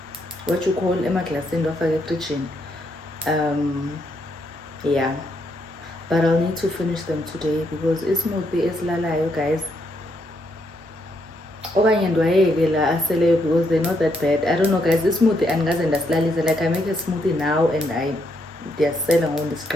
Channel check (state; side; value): normal; both; correlation 0.76